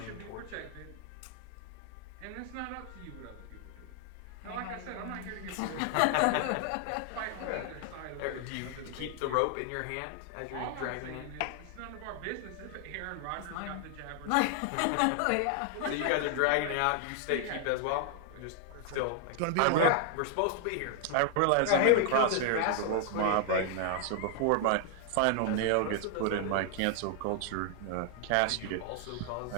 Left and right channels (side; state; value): both; different; correlation 0.00